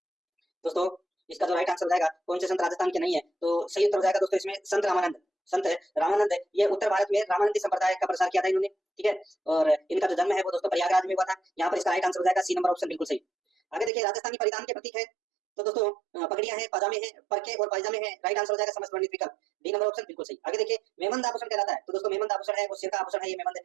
दोस्तों, इसका जो राइट आंसर हो जाएगा कौन से संत राजस्थान के नहीं है? तो सही उत्तर हो जाएगा दोस्तों इसमें संत रामानंद। संत रामानंद, ये उत्तर भारत में रामानंदी संप्रदाय का प्रसार किया था इन्होंने, ठीक है। और इनका जो जन्म है वो दोस्तों प्रयागराज में हुआ था। यहाँ पर इसका राइट आंसर हो जाएगा सी नंबर ऑप्शन, बिल्कुल सही। आगे देखिए राजस्थानी परिधान के प्रतीक है, तो दोस्तों पगड़ियां हैं, पाजामे हैं, परके और पायजामे हैं, राइट आंसर हो जाएगा समस्त वर्णित विकल्प, डी नंबर ऑप्शन बिल्कुल सही। आगे देखिए मेमंद आभूषण कहलाता है, तो दोस्तों मेमंद आभूषण है वो सिर का आभूषण है, ये मेमंद,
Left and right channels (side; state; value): left; drops out; at 13.9 s